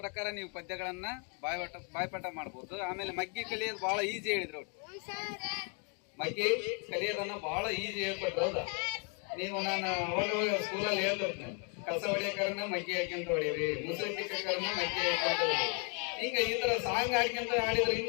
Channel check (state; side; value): quieter; right; 35.1 dB